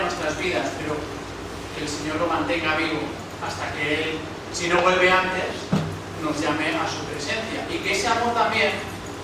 nuestras vidas, pero que el Señor lo mantenga vivo hasta que Él, si no vuelve antes, nos llame a su presencia, y que ese amor también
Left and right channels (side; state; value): both; identical; correlation 1.00